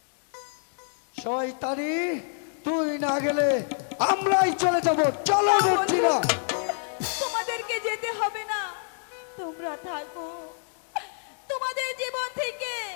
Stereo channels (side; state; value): right; silent; 60 dB below the other